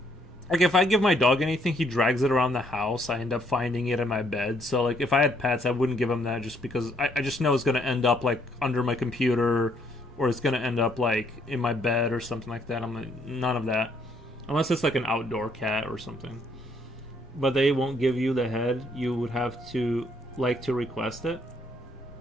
Like if I give my dog anything, he drags it around the house. I end up finding it in my bed. So like if I had pets, I wouldn't give him that just because I just know it's gonna end up like under my computer, or it's gonna end up like in my bed or something like that. I'm like, none of that. Unless it's like an outdoor cat or something. But they won't give you the head. You would have to request it.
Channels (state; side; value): normal; both; correlation 0.69